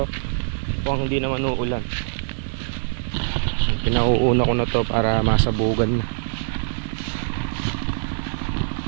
kung hindi naman uulan, pinauuna ko na to para masabugan na.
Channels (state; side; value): silent; left; 57 dB below the other